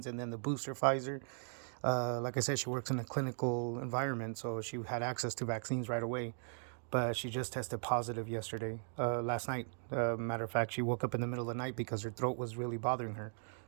and then the booster Pfizer. Like I said, she works in a clinical environment, so she had access to vaccines right away. But she just tested positive last night. Matter of fact, she woke up in the middle of the night because her throat was really bothering her.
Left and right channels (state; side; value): silent; left; digital silence